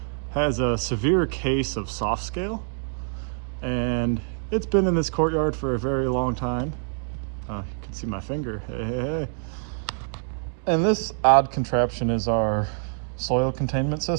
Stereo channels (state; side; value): silent; left; 61 dB below the other